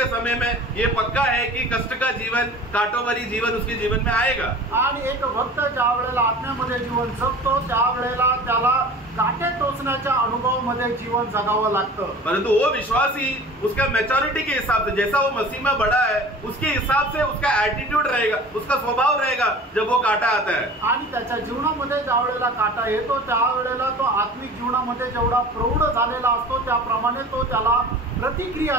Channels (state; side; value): normal; both; correlation 0.41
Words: समय में ये पक्का है कि कष्ट का जीवन, कांटों भरी जीवन उसके जीवन में आएगा। आणि एक भक्त ज्या वेळेला आत्म्यामध्ये जीवन जगतो त्यावेळेला त्याला काटे टोचण्याच्या अनुभवामध्ये जीवन जगावं लागतं, परंतु वो विश्वासी उसका मैच्योरिटी के हिसाब से, जैसा वो मसीह में बड़ा है उसके हिसाब से उसका एटीट्यूड रहेगा, उसका स्वभाव रहेगा जब वो काटा आता है। आणि त्याच्या जीवनामध्ये ज्या वेळेला काटा येतो त्यावेळेला तो आत्मिक जीवनामध्ये जेवढा प्रौढ झालेला असतो त्याप्रमाणे तो त्याला